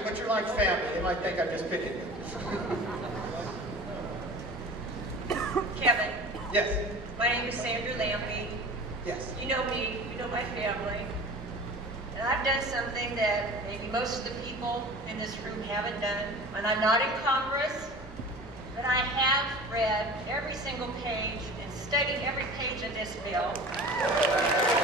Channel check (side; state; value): both; normal; correlation 0.39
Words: but you're like family. They might think I'm just picking you. Kevin. Yes. My name is Sandra Lampy. Yes. You know me, you know my family. And I've done something that maybe most of the people in this room haven't done. And I'm not in Congress, but I have read every single page and studied every page of this bill.